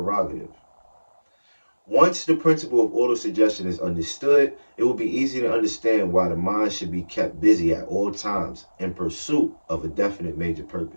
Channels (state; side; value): inverted; both; correlation -1.00